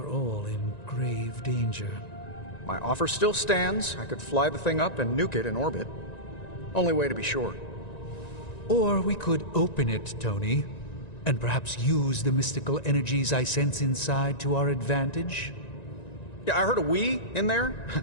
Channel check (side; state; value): right; late; 1.9 ms